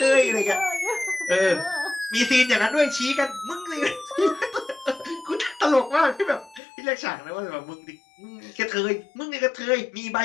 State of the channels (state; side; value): drops out; right; at 6.6 s